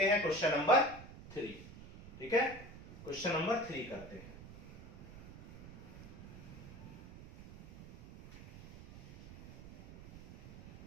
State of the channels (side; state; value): right; noise; rumble, 16 dB below the sound